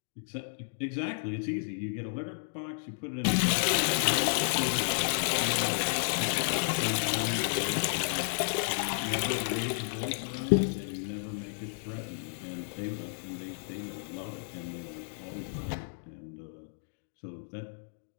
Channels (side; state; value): right; silent; digital silence